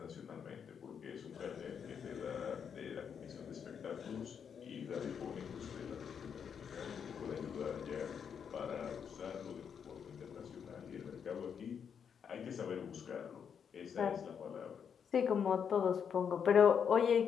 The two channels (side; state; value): right; quieter; 7.3 dB